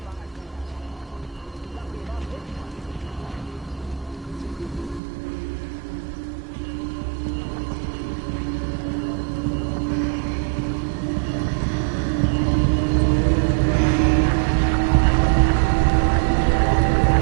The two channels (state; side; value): drops out; left; at 5.0 s